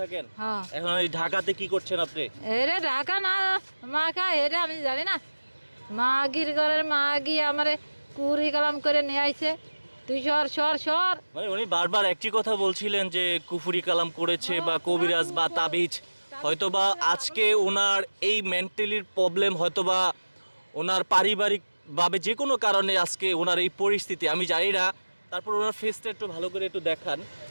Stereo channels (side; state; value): both; inverted; correlation -1.00